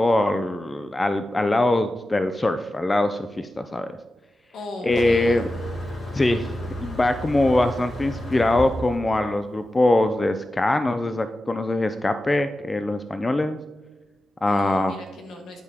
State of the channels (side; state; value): both; normal; correlation 0.93